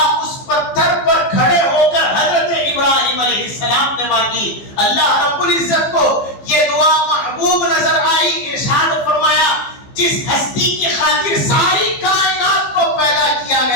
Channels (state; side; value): late; right; 15 ms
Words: اس پتھر پر کھڑے ہو کر حضرت ابراہیم علیہ السلام نے مانگی، اللہ رب العزت کو یہ دعا محبوب نظر آئی، ارشاد فرمایا جس ہستی کی خاطر ساری کائنات کو پیدا کیا